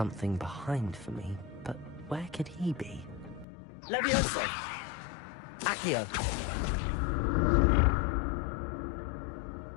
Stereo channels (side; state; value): right; drops out; at 3.5 s